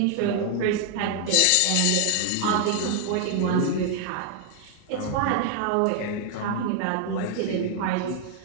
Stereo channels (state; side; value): different; both; correlation 0.00